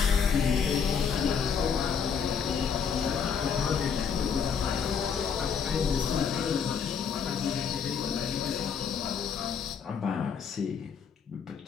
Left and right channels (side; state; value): right; quieter; 6.7 dB